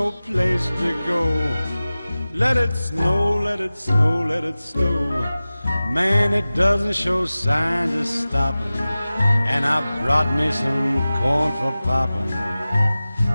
place to go, let it snow, let it snow, let it snow. Man, it doesn't show signs of stopping, and I brought me some corn for popping.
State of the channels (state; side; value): inverted; both; correlation -0.97